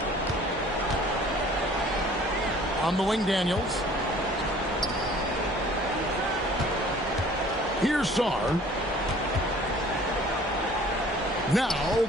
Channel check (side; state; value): both; normal; correlation 0.51